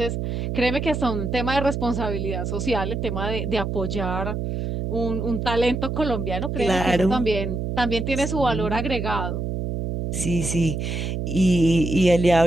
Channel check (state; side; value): noise; right; hum, 3 dB below the sound